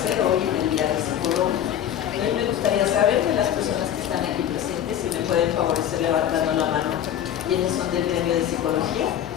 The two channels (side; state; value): right; quieter; 10.4 dB